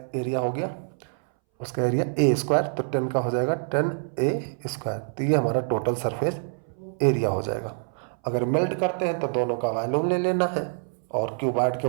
एरिया हो गया, उसका एरिया ए स्क्वायर, तो 10 का हो जाएगा 10a²। तो ये हमारा टोटल सरफेस एरिया हो जाएगा। अगर मेल्ट करते हैं तो दोनों का वॉल्यूम ले लेना है और क्यूबॉइड के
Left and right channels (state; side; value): silent; left; 61 dB below the other